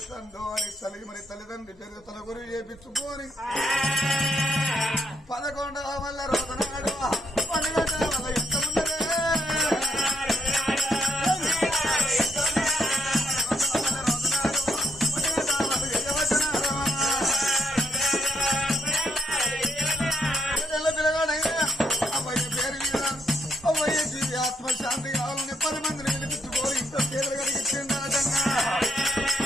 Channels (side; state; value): both; normal; correlation 0.74